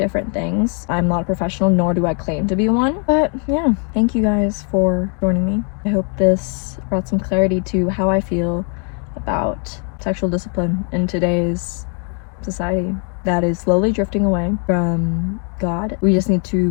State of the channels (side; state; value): right; quieter; 39.9 dB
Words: things. I'm not a professional, nor do I claim to be one. But yeah, thank you guys for joining me. I hope this brought some clarity to how I feel about sexual discipline in today's society that is slowly drifting away from God. We just need to